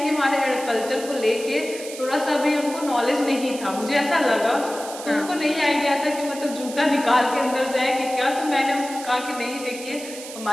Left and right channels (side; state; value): right; noise; hiss, 13 dB below the sound